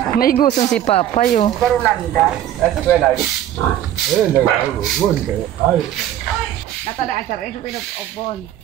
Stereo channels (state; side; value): quieter; left; 11.7 dB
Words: May gusto si Papay oh. Nag-ugon kayo. Ay. Natadaan sa rin sa pinag-obon.